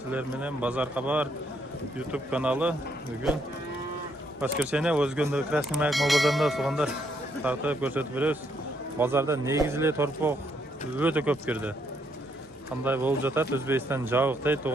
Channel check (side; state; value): both; normal; correlation 0.73